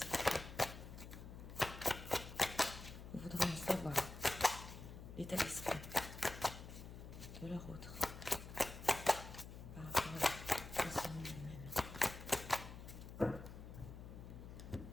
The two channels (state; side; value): noise; left; hum, 12 dB below the sound